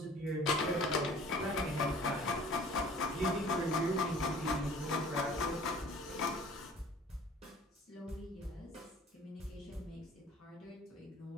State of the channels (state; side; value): normal; both; correlation 0.49